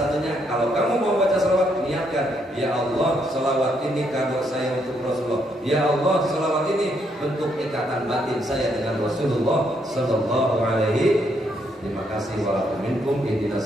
kalau kamu mau baca sholawat, niatkan, ya Allah, sholawat ini kado saya untuk Rasulullah. Ya Allah, sholawat ini bentuk ikatan batin saya dengan Rasulullah Sallallahu Alaihi. Terima kasih. Walaupun ihdinas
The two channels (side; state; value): both; normal; correlation 0.74